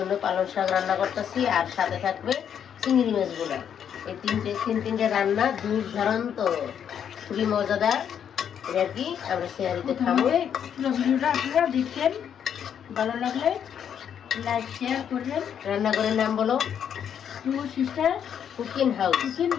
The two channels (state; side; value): quieter; right; 8.6 dB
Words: পালং শাক রান্না করতেছি, আর সাথে থাকবে চিংড়ি মাছগুলো। এই তিনটে রান্না দুর্দান্ত, খুবই মজাদার। এটা আর কি আমরা সেহারিতে খাবো। পুরো ভিডিওটা আপনারা দেখছেন, ভালো লাগলে লাইক শেয়ার করবেন। রান্নাঘরের নাম বলো, two sister cooking house. Kitchen